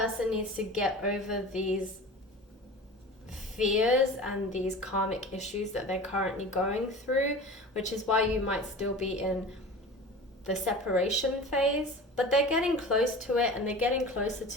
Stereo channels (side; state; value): both; normal; correlation 0.36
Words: needs to get over these fears and these karmic issues that they're currently going through, which is why you might still be in the separation phase. But they're getting close to it, and they're getting closer